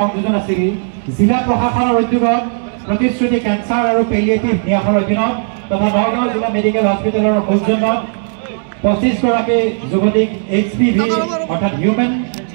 আছিল জিলা প্ৰশাসনৰ উদ্যোগত প্ৰতিশ্ৰুতি কেঞ্চাৰ আৰু পেলিয়েটিভ ন্যাসৰ অধীনত তথা নগাঁও জিলা মেডিকেল হস্পিটেলৰ সৌজন্যত 25 গৰাকী যুৱতীক HPV অৰ্থাৎ হিউমেন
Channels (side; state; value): left; silent; digital silence